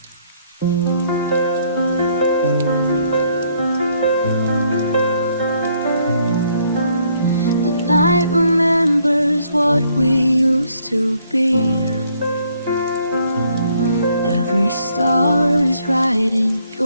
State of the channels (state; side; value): inverted; both; correlation -0.68